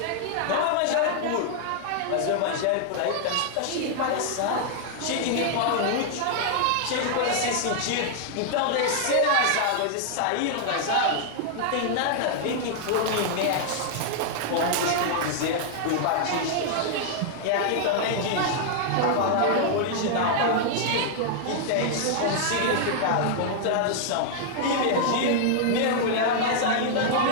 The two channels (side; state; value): both; different; correlation -0.01